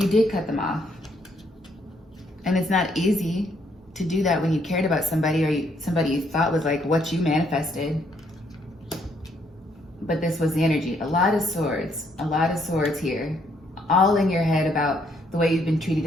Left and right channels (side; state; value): both; normal; correlation 0.71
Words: did cut them off. And it's not easy to do that when you cared about somebody, or somebody you thought was like what you manifested. But this was the energy. A lot of swords here, all in your head about the way you've been treated